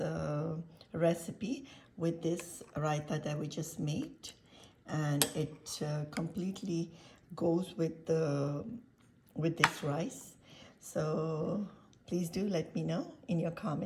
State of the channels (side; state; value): both; identical; correlation 1.00